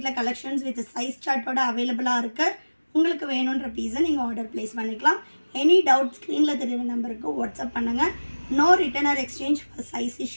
கலெக்ஷன்ஸ் வித் சைஸ் சார்ட்டோட அவைலபிளாக இருக்குது. உங்களுக்கு வேணுன்ற பீஸை நீங்கள் ஆர்டர் ப்ளேஸ் பண்ணிக்கலாம். எனி டவுட் ஸ்க்ரீனில் தெரியுற நம்பருக்கு வாட்ஸ்அப் பண்ணுங்கள். No return or exchange for size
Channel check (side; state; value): both; inverted; correlation -1.00